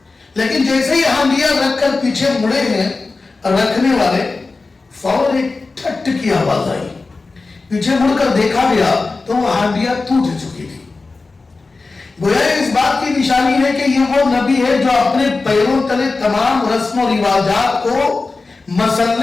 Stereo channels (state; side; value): quieter; right; 3.8 dB